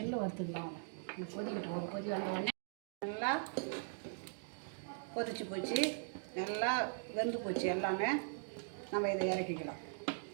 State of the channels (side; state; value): left; silent; digital silence